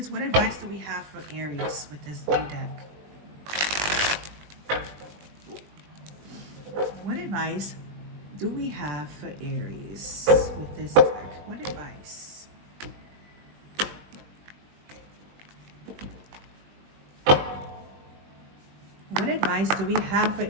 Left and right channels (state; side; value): late; left; 20 ms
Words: what advice do we have for Aries with this new deck? What advice do we have for Aries with this deck? What advice? What advice do we have for